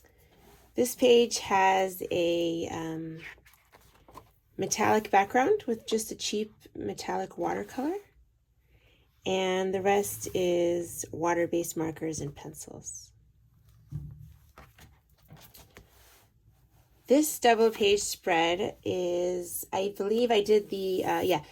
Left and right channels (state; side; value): identical; both; correlation 1.00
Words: This page has a metallic background with just a cheap metallic watercolor, and the rest is water-based markers and pencils. This double page spread is, I believe I did the,